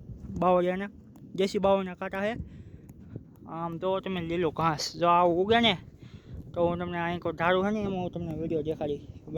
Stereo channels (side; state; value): both; identical; correlation 1.00